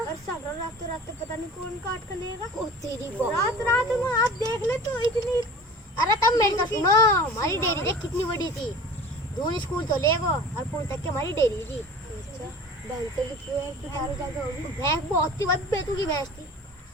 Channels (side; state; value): both; normal; correlation 0.41